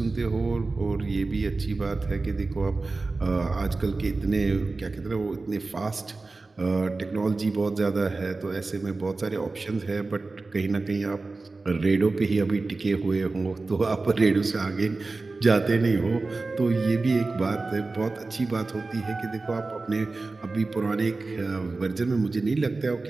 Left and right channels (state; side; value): quieter; left; 3.6 dB